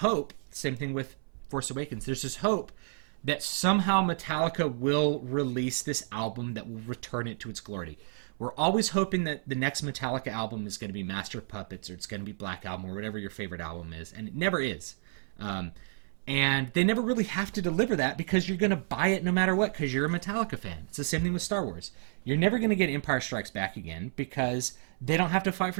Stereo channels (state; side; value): silent; left; 57 dB below the other